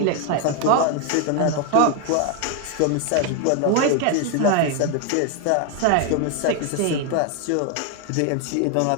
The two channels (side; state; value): both; different; correlation 0.01